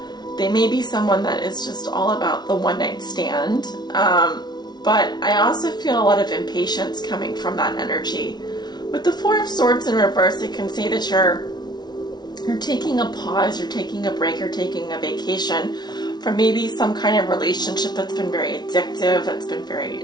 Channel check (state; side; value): late; right; 0.20 ms